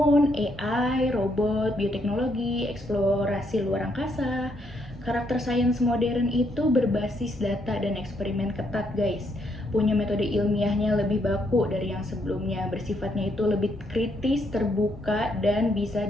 AI, robot, bioteknologi, eksplorasi luar angkasa. Karakter sains modern itu berbasis data dan eksperimen ketat guys, punya metode ilmiahnya lebih baku dari yang sebelumnya, bersifatnya itu lebih kritis, terbuka, dan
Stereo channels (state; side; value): normal; both; correlation 0.74